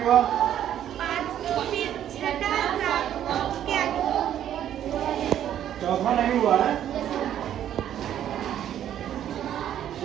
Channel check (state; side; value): quieter; left; 10.7 dB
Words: हुआ? चौथा नहीं हुआ है।